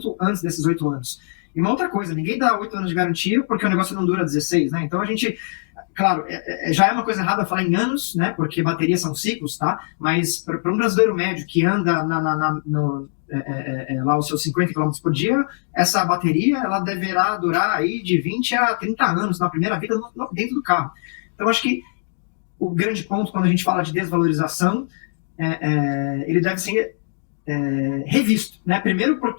antes desses 8 anos. E uma outra coisa, ninguém dá 8 anos de garantia porque o negócio não dura 16, né? Então a gente, claro, já é uma coisa errada falar em anos, né? Porque baterias são ciclos, tá? Mas para um brasileiro médio que anda lá os seus 50 km por dia, essa bateria ela deverá durar aí de 20 a 30 anos na primeira vida dentro do carro. Então acho que o grande ponto quando a gente fala de desvalorização, ele deve ser revisto, né? Primeiro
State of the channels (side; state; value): right; silent; digital silence